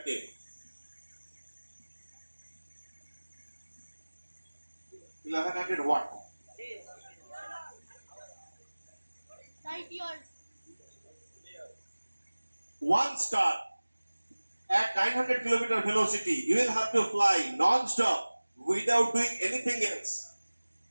take. 1100 what? Light years. One star at 900 km velocity, you will have to fly non-stop without doing anything else.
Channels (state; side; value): inverted; both; correlation -1.00